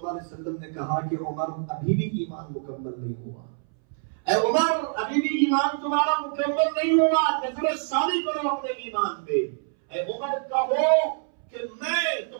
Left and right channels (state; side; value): silent; left; 61 dB below the other